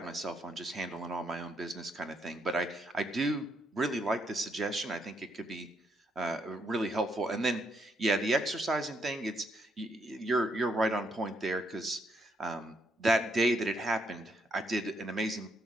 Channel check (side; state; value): both; normal; correlation 0.75